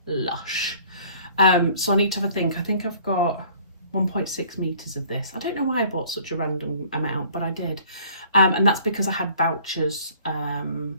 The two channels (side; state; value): both; inverted; correlation -0.54